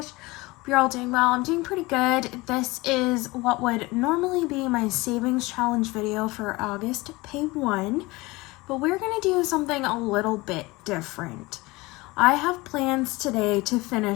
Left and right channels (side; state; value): right; quieter; 22.2 dB